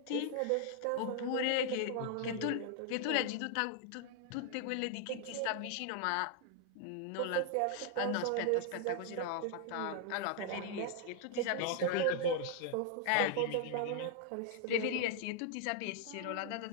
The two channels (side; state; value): both; different; correlation 0.00